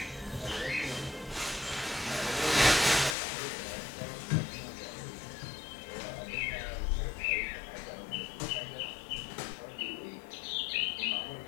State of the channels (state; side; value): drops out; right; at 3.2 s